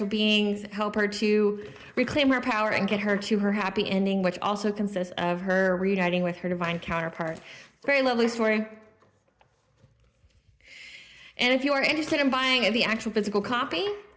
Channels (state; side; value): identical; both; correlation 1.00